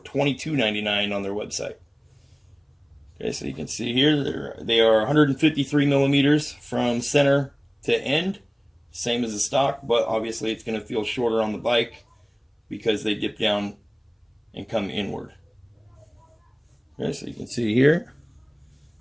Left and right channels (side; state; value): both; identical; correlation 1.00